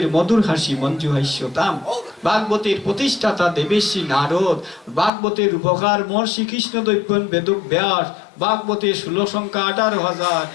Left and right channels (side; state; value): right; drops out; at 5.1 s